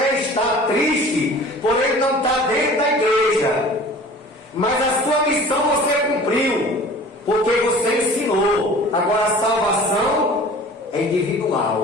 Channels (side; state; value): both; normal; correlation 0.44